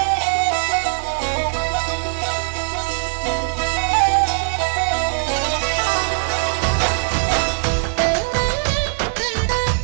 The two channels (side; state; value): left; silent; 63 dB below the other